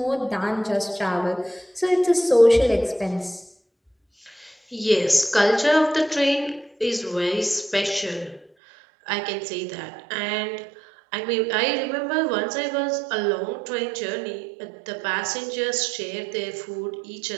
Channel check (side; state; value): left; drops out; at 8.5 s